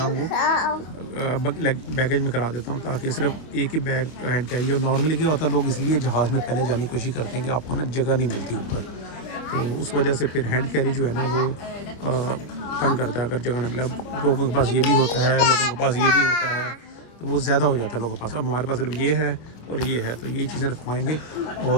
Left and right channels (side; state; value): right; late; 26 ms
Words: वो बैगेज में करा देता हूँ, ताकि सिर्फ एक ही बैग हैंड कैरी हो। नॉर्मली क्या होता है, लोग इसलिए जहाज़ में पहले जाने की कोशिश करते हैं कि आपको ना जगह नहीं मिलती ऊपर, तो उस वजह से फिर हैंड कैरी जो है ना वो तंग करता है अगर जगह नहीं मिले। अब लोगों के पास ये भी होता है, लोगों के पास ये भी होता है, तो वो ज़्यादा हो जाता है लोगों के पास। अब हमारे पास सिर्फ ये है और ये है, तो यही चीज़ें रखवाएंगे